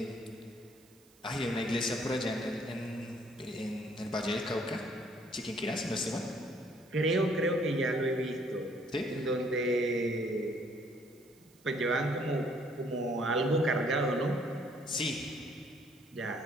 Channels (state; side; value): noise; right; hiss, 29 dB below the sound